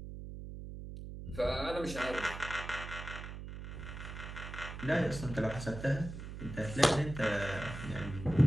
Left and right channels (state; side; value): noise; right; hum, 9 dB below the sound